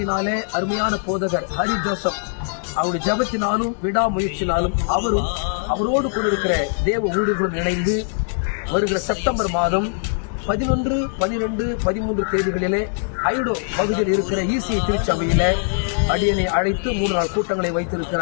அருமையான போதகர் ஹரி ஜோசப் அவருடைய ஜபத்தினாலும் விடாமுயற்சினாலும் அவரோடு கூட இருக்கிற தேவ ஊழியர்களும் இணைந்து வருகிற செப்டம்பர் மாதம் 11, 12, 13 தேதிகளிலே ஐடோ பகுதியில் இருக்கிற ஈசிஐ திருச்சபையில அடியனை அழைத்து 3 நாள் கூட்டங்களை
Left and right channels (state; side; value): silent; right; 61 dB below the other